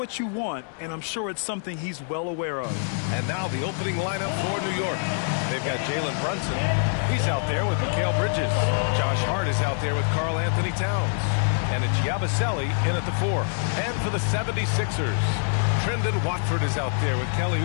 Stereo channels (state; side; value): silent; right; digital silence